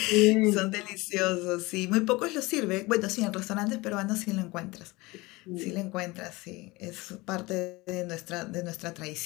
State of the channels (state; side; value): quieter; right; 22.4 dB